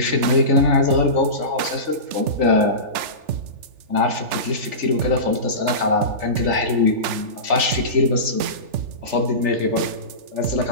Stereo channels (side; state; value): left; late; 3.4 ms